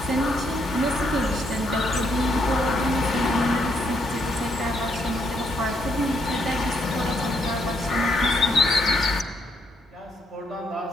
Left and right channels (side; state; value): both; normal; correlation 0.75